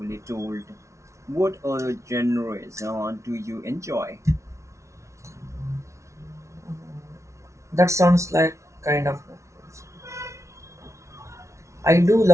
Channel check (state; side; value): late; left; 0.14 ms